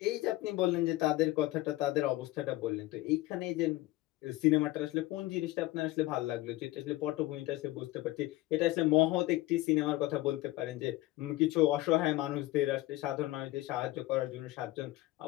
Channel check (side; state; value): right; quieter; 18.1 dB